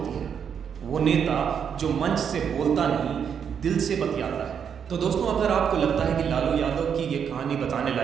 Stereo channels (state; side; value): quieter; left; 7.5 dB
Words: है, वो नेता जो मंच से बोलता नहीं, दिल से बतियाता है। तो दोस्तों, अगर आपको लगता है कि लालू यादव की ये कहानी बताने